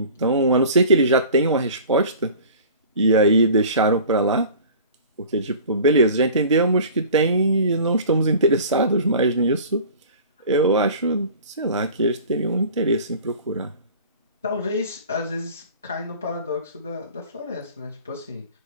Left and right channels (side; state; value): both; inverted; correlation -0.42